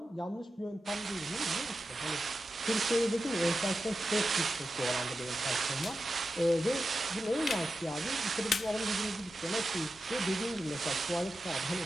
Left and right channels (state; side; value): normal; both; correlation 0.91